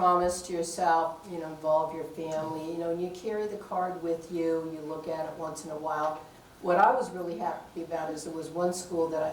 to yourself, involve your family, and you carry the card with you, you look at it once in a while. What I was really happy about is there was one school that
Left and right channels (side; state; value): both; identical; correlation 1.00